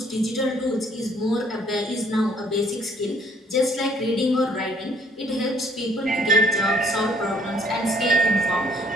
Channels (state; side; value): normal; both; correlation 0.61